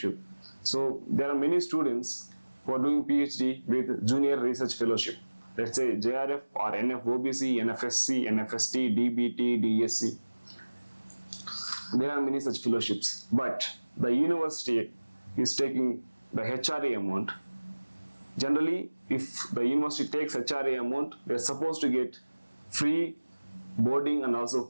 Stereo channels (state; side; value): inverted; both; correlation -1.00